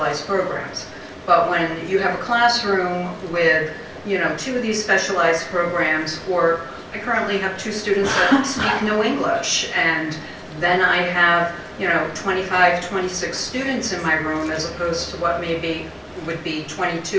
programs. But when you have a classroom with, 2 of these specialized programs, or I currently have 2 students that speak no English, and then I have, 25, 26 students in my room as opposed to what would be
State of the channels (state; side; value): identical; both; correlation 1.00